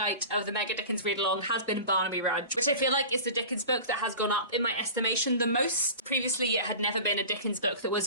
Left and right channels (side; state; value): both; inverted; correlation -0.36